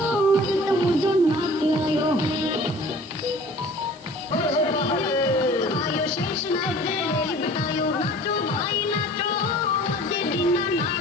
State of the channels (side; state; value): right; noise; hiss, 27 dB below the sound